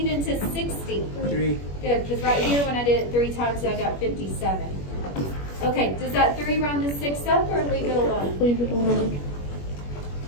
into 60. 3. Good, because right here when I did it 3 times, I got 57. Okay, does that 3 round the 6 up or leave it alone? Leave it alone.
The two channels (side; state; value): right; late; 21 ms